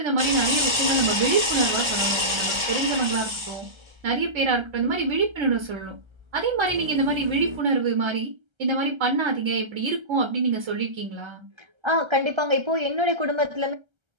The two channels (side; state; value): left; late; 1.3 ms